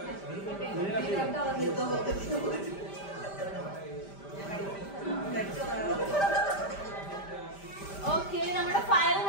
ഓക്കെ, നമ്മുടെ ഫൈനൽ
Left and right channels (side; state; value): right; late; 5.1 ms